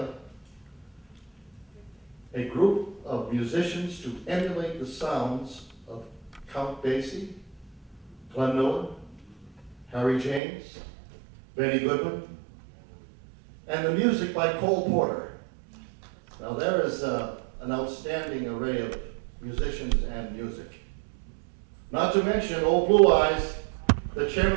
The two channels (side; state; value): left; drops out; at 10.4 s